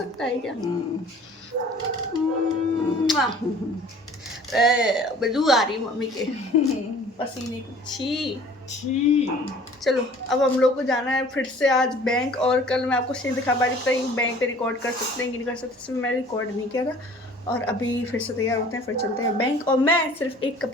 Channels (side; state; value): both; normal; correlation 0.49